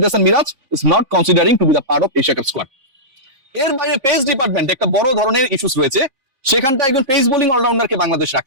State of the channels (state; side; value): late; left; 3.6 ms